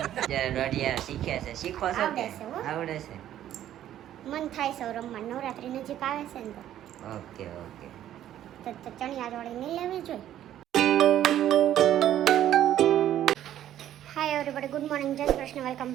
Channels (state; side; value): quieter; left; 11.8 dB